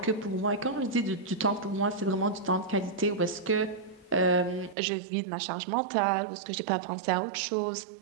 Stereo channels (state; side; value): drops out; left; at 4.8 s